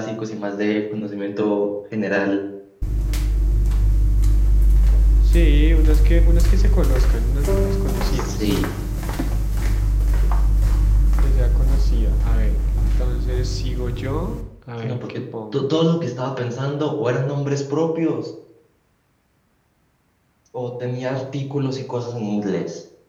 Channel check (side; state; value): both; identical; correlation 1.00